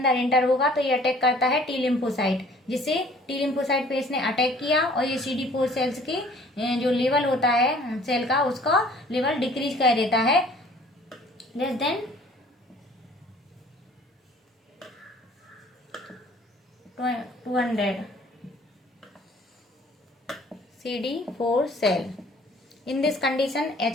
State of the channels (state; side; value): normal; both; correlation 0.53